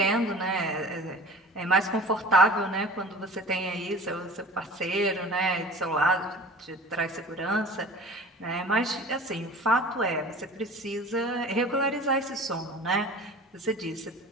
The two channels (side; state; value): both; normal; correlation 0.42